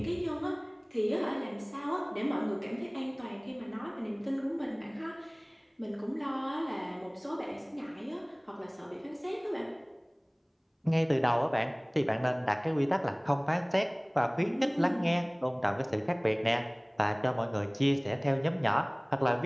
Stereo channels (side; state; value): both; identical; correlation 1.00